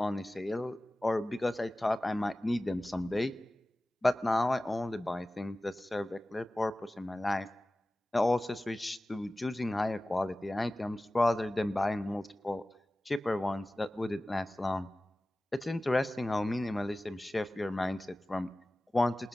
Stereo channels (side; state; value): both; normal; correlation 0.97